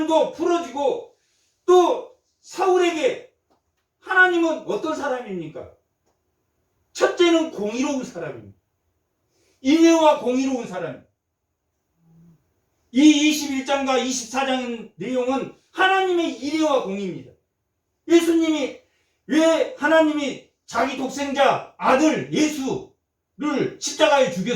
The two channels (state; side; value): identical; both; correlation 1.00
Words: 풀어지고, 또 사울에게 하나님은 어떤 사람입니까? 첫째는 공의로운 사람입니다. 인애와 공의로운 사람. 이 21장과 24장 내용은 하나님의 인애와 공의입니다. 예수님이 왜 하나님이 자기 독생자 아들 예수를 십자가에